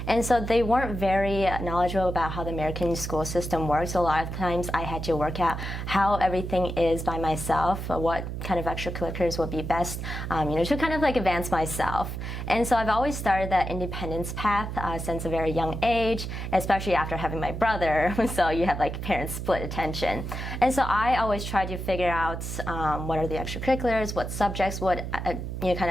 And so they weren't very knowledgeable about how the American school system works. So a lot of times I had to work out how everything is by myself, what kind of extracurriculars would be best, to kind of advance myself. And so I've always started that independence path since a very young age, especially after having my brother. So you have parents split attention. And so I always try to figure out what are the extracurriculars, what subjects would kind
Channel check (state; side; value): noise; right; hum, 5 dB below the sound